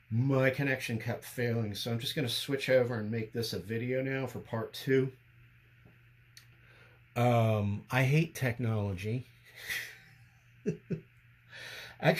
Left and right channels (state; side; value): identical; both; correlation 1.00